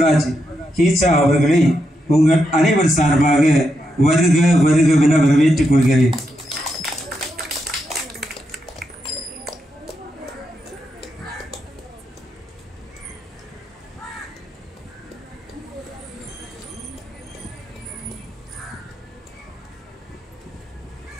கீச்சா அவர்களை உங்கள் அனைவர் சார்பாக வருக வருகவென வரவேற்றுக் கொள்கிறேன்.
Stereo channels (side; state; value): both; normal; correlation 0.84